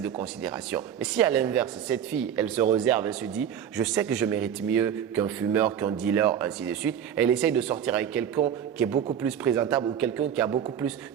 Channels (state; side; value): quieter; left; 9.0 dB